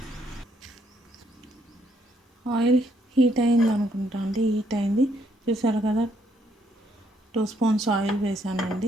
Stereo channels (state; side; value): normal; both; correlation 0.71